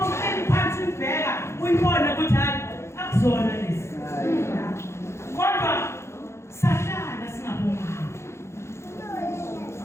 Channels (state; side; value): late; right; 0.13 ms